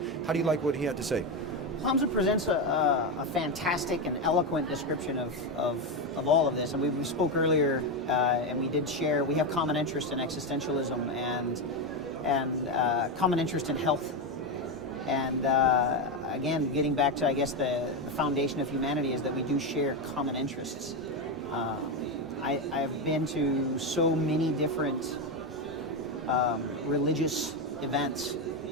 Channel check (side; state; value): both; normal; correlation 0.10